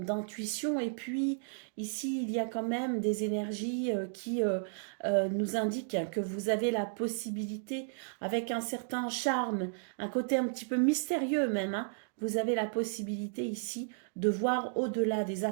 Et puis ici, il y a quand même des énergies qui nous indiquent que vous avez la possibilité, avec un certain charme, un côté un petit peu mystérieux même, hein, vous avez la possibilité ici de voir au-delà des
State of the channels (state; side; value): silent; left; digital silence